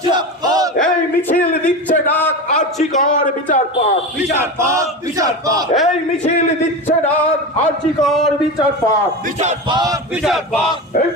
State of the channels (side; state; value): both; normal; correlation 0.24